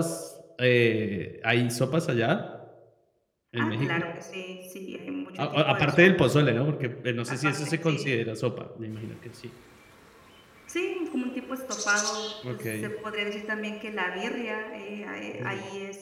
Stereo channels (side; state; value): both; identical; correlation 1.00